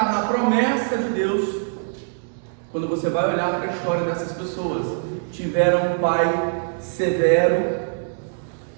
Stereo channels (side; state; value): left; silent; digital silence